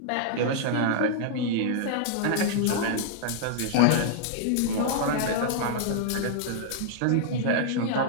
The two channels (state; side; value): different; both; correlation -0.01